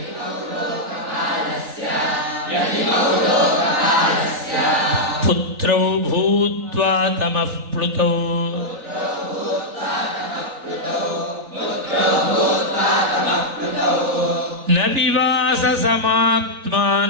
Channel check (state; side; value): late; left; 3.4 ms